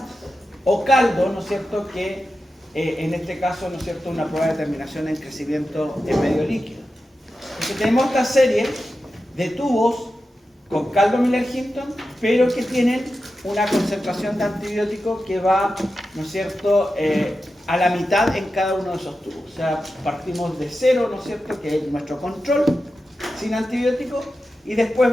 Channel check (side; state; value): both; normal; correlation 0.91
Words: o caldo, ¿no es cierto?, que en este caso, ¿no es cierto?, una prueba de determinación en crecimiento en medio líquido. Entonces tenemos esta serie de tubos con caldo Miller-Hinton, pero que tienen una concentración de antibiótico que va, ¿no es cierto?, a la mitad en cada uno de esos tubos. O sea, partimos de cero, ¿no es cierto?, que es nuestro control, sin antibiótico, y